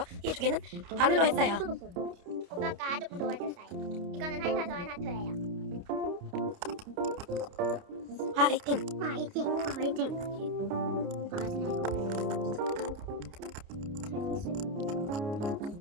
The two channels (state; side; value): late; left; 29 ms